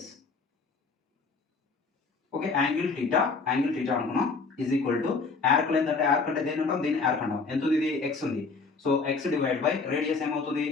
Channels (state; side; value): quieter; right; 4.4 dB